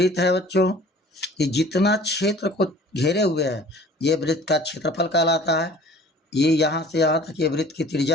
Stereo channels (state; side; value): normal; both; correlation 0.47